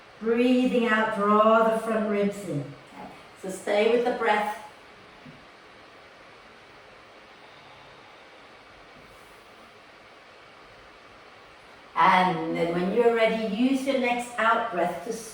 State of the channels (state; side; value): identical; both; correlation 1.00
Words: Breathing out, draw the front ribs in. Okay? So stay with the breath. And then when you're ready, use your next out breath to